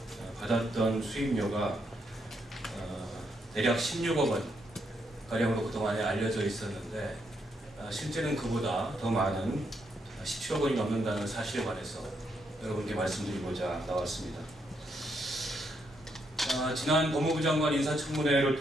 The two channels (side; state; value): both; normal; correlation 0.77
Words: 받았던 수임료가 대략 16억 원 가량으로 그동안에 알려져 있었는데 실제는 그보다 더 많은 17억 원이 넘는다는 사실에 관해서 여러분께 말씀드리고자 나왔습니다. 지난 법무부 장관